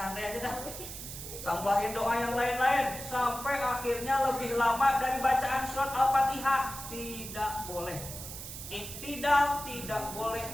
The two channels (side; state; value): right; noise; hiss, 10 dB below the sound